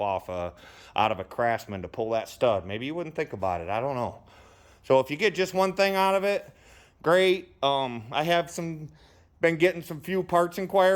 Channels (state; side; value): identical; both; correlation 1.00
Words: out of a Craftsman to pull that stud. Maybe you wouldn't think about it. I don't know. So if you get just one thing out of it, great. I have been getting some few parts